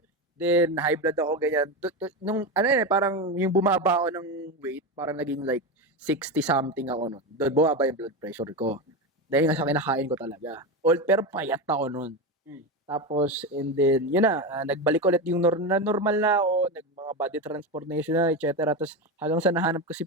Then, high blood ako, ganyan. Parang yung bumaba ako ng weight, parang naging like 60 something ako nun. Doon bumaba yung blood pressure ko. Dahil nga sa kinakain ko talaga. Pero payat ako nun. Tapos, and then, yun na, nagbalik ulit yung normal na ako, mga body transformation na, etc. Tapos, hanggang sa nahanap ko si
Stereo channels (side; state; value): both; normal; correlation 0.17